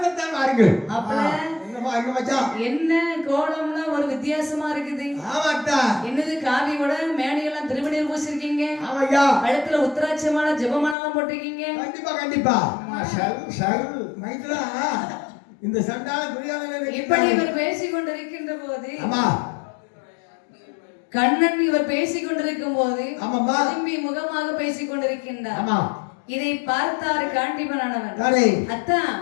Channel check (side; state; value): right; drops out; at 11.0 s